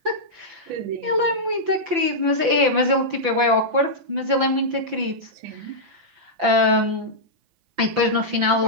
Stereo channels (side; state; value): left; late; 5.9 ms